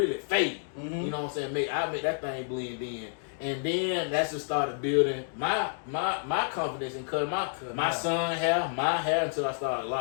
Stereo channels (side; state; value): right; silent; digital silence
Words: fade. You know what I'm saying? I make that thing blend in. And then that's just started building my confidence in cutting my son hair, my hair until I started